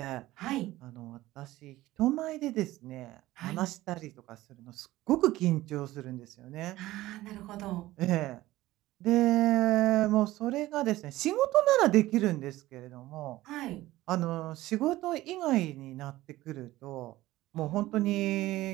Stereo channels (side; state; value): left; quieter; 16.8 dB